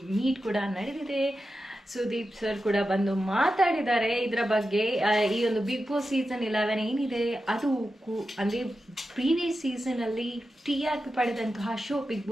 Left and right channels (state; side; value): normal; both; correlation 0.91